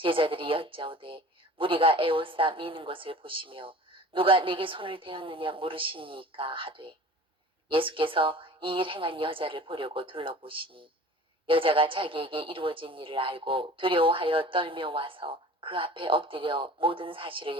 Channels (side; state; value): both; normal; correlation 0.42